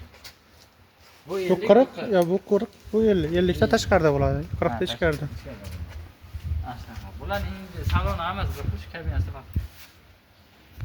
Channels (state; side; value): identical; both; correlation 1.00